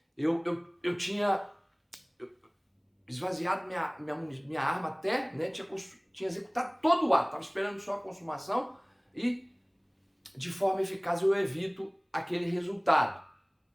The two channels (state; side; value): identical; both; correlation 1.00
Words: eu tinha esvaziado minha arma até, né, tinha executado todo o ato, estava esperando só a consumação e de forma eficaz eu evito aquele resultado.